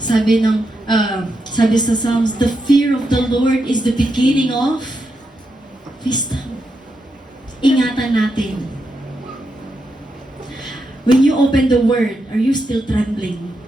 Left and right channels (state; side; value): normal; both; correlation 0.84